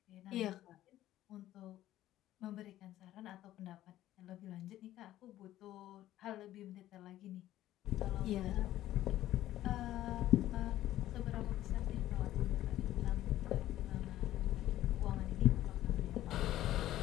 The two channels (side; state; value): right; quieter; 13.9 dB